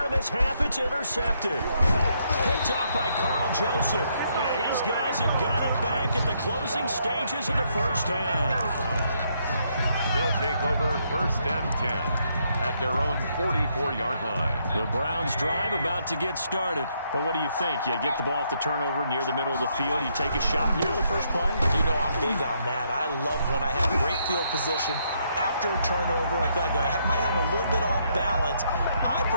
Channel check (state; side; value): inverted; both; correlation -0.74